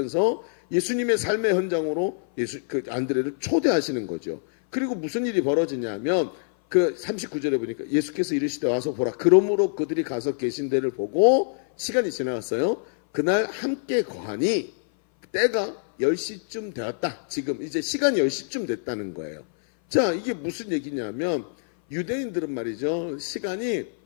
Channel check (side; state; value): right; silent; 58 dB below the other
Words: 예수님의 삶의 현장으로 안드레를 초대하시는 거죠. 그리고 무슨 일이 벌어지냐면 그 39절에 보니까 예수께서 이르시되 와서 보라. 그러므로 그들이 가서 계신 데를 보고 시간이 지나갔어요. 그날 함께 거하니 때가 10시쯤 되었다. 지금 이제 시간이 10시쯤 됐다는 거예요. 자, 이게 무슨 얘기냐면 유대인들은 말이죠. 시간이